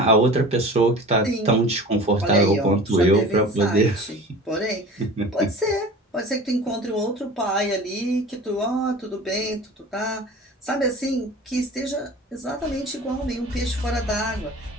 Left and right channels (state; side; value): normal; both; correlation 0.39